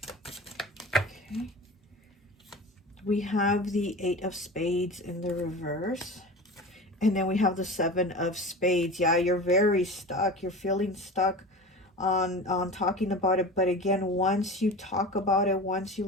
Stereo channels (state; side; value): normal; both; correlation 0.33